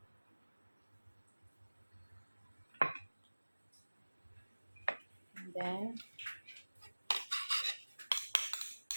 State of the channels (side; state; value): both; inverted; correlation -1.00